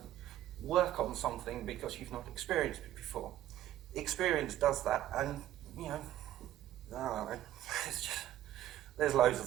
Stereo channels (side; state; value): left; quieter; 13.1 dB